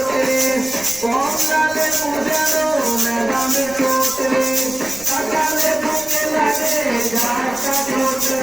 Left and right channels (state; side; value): noise; right; rumble, 21 dB below the sound